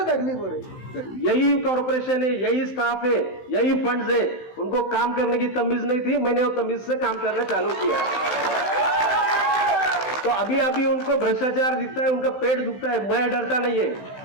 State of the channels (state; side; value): late; right; 16 ms